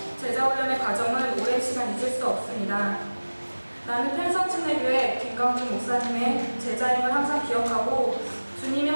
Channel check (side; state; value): both; inverted; correlation -1.00